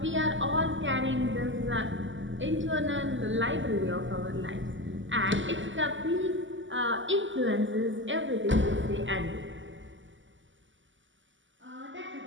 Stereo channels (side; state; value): left; late; 0.55 ms